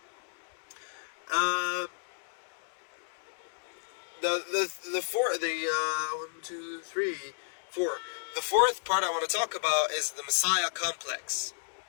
The fourth part I want to talk about is the Messiah complex,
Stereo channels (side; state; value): right; silent; digital silence